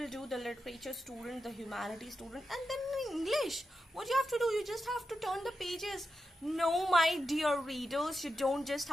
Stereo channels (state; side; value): normal; both; correlation 0.89